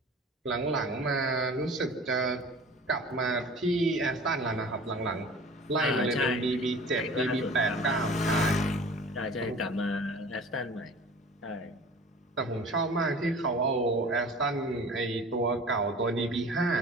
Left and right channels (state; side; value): normal; both; correlation 0.43